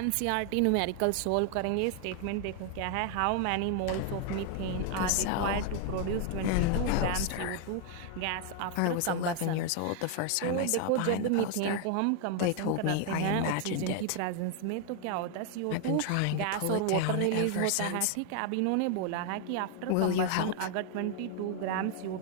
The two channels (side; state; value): both; different; correlation 0.00